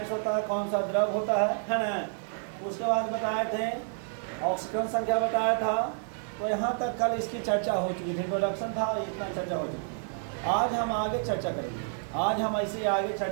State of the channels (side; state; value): left; silent; digital silence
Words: होता है, कौन सा द्रव होता है ना। उसके बाद बताए थे ऑक्सीजन संख्या बताया था। तो यहाँ तक कल इसकी चर्चा हो चुकी थी, इंट्रोडक्शन था, इतना चर्चा हो चुकी। आज हम आगे चर्चा करेंगे, आज हम ऐसे आगे